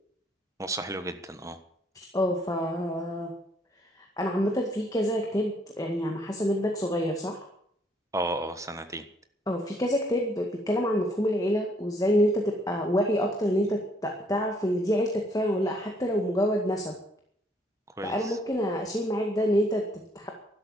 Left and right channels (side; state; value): both; normal; correlation 0.66